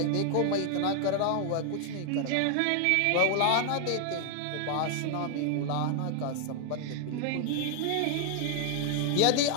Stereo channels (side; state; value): both; different; correlation 0.00